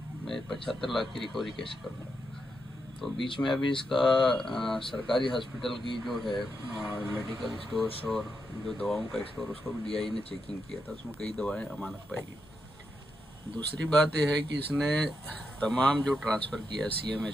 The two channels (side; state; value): both; normal; correlation 0.84